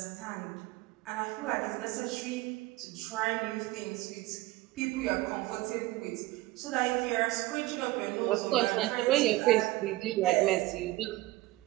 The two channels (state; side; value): quieter; left; 18.3 dB